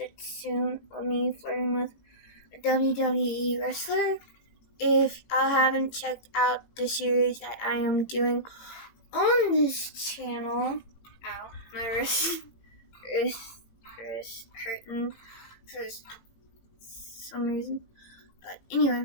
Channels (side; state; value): right; late; 18 ms